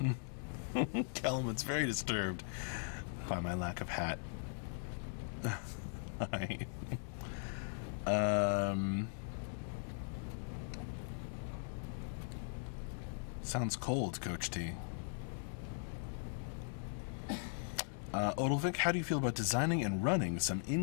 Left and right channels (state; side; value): silent; right; digital silence